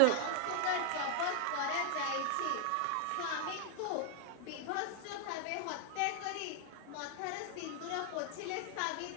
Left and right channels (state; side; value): different; both; correlation 0.00